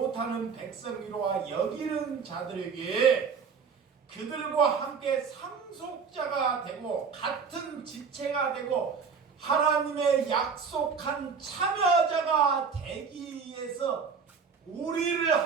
백성이로와 여기는 자들에게 그들과 함께 상속자가 되고 같은 지체가 되고 하나님의 약속한 참여자가 되기 위해서 우리를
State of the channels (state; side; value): quieter; left; 5.7 dB